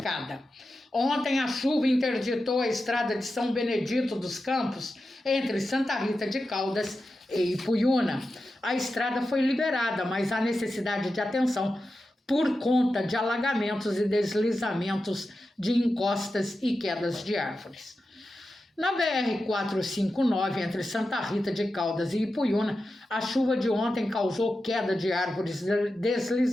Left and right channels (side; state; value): both; normal; correlation 0.91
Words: Ontem a chuva interditou a estrada de São Benedito dos Campos, entre Santa Rita de Caldas e Ipuiuna. A estrada foi liberada, mas há necessidade de atenção por conta de alagamentos e deslizamentos de encostas e quedas de árvores. Na BR-459, entre Santa Rita de Caldas e Ipuiuna, a chuva de ontem causou queda de árvores e